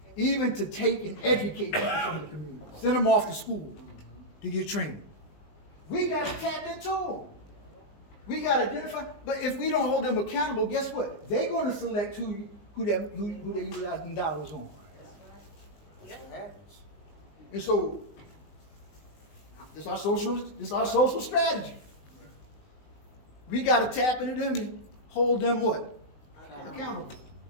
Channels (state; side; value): late; right; 20 ms